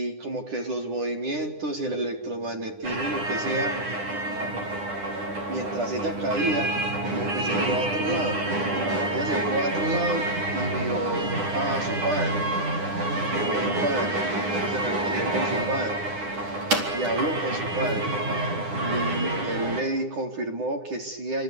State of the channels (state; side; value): late; left; 9.9 ms